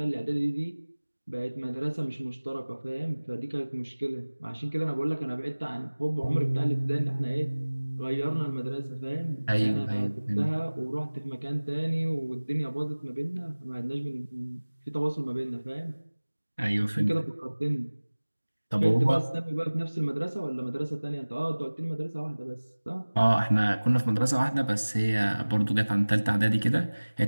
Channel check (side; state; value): both; inverted; correlation -1.00